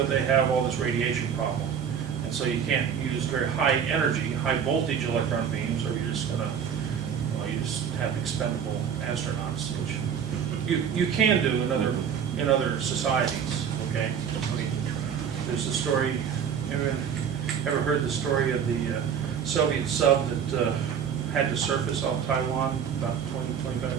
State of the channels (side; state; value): left; quieter; 7.8 dB